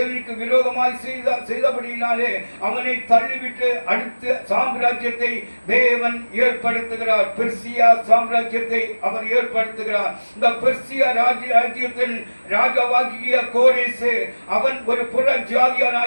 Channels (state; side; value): inverted; both; correlation -1.00